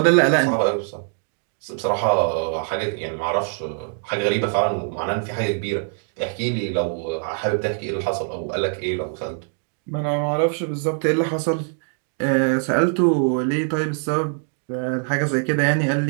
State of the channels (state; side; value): silent; left; 58 dB below the other